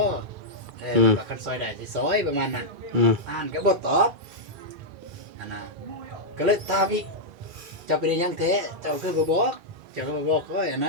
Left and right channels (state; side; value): normal; both; correlation -0.06